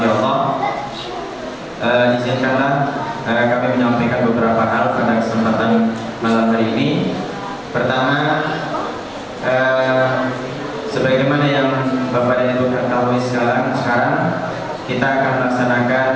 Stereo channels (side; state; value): both; identical; correlation 1.00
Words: Allah, izinkanlah kami menyampaikan beberapa hal pada kesempatan malam hari ini. Pertama, sebagaimana yang Bapak dan Ibu ketahui sekarang kita akan melaksanakan